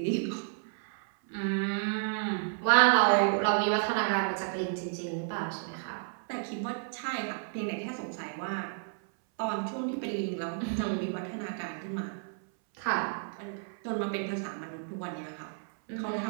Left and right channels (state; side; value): silent; left; 57 dB below the other